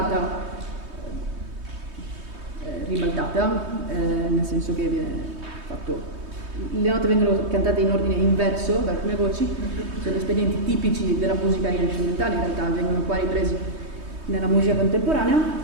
ribaltata, nel senso che viene fatto, le note vengono cantate in ordine inverso da alcune voci, sono espedienti tipici della musica rinascimentale, in realtà vengono qua ripresi nella musica contemporanea,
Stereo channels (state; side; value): late; left; 3.2 ms